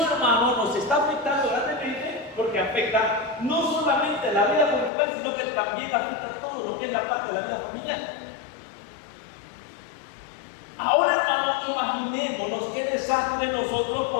hermano, nos está afectando grandemente, porque afecta no solamente la vida conjugal, sino que también afecta todo lo que es la parte de la vida familiar. Ahora, hermano, imaginémonos qué desastre nosotros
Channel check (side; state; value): right; drops out; at 4.9 s